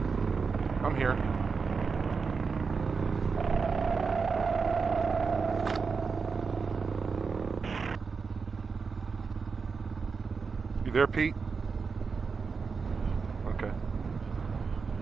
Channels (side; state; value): left; quieter; 5.1 dB